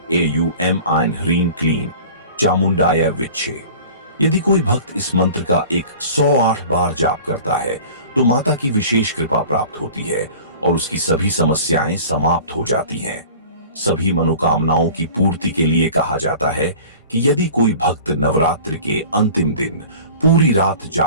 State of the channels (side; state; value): both; inverted; correlation -0.42